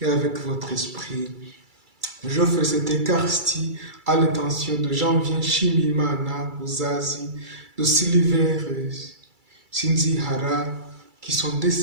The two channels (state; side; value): late; left; 2.3 ms